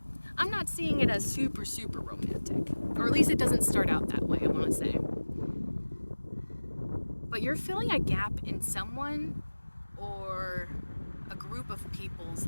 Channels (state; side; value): inverted; both; correlation -1.00